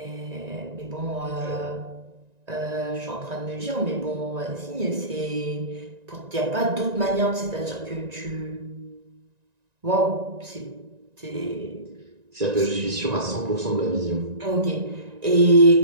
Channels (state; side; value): late; left; 1.9 ms